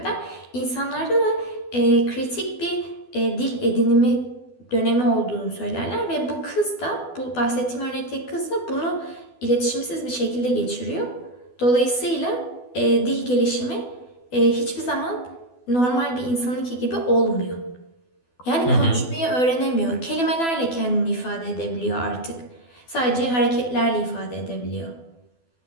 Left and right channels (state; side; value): late; right; 12 ms